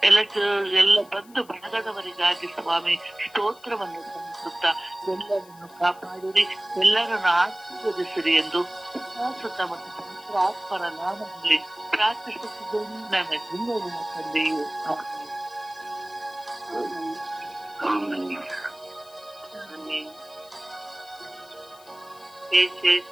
ಎಲ್ಲ ಬಂಧು ಬಳಗದವರಿಗಾಗಿ ಸ್ವಾಮಿ ಸ್ತೋತ್ರವನ್ನು ಸಲ್ಲಿಸುತ್ತಾ ಎಲ್ಲರನ್ನು ಕಾಪಾಡಿರಿ, ಎಲ್ಲರನ್ನು ಆಶೀರ್ವದಿಸಿರಿ ಎಂದು ಸುತ್ತ ಮತ್ತು ಪವಿತ್ರ ಆತ್ಮರ ನಾಮದಲ್ಲಿ ಪ್ರಾರ್ಥಿಸುತ್ತಿದ್ದೇನೆ ನನ್ನ ಜೀವನ ತಂದೆಯು. ಏಸೆ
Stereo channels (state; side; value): noise; left; hiss, 25 dB below the sound